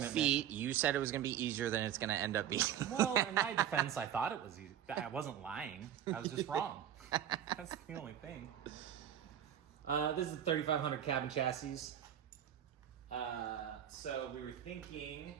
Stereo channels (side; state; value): left; quieter; 10.3 dB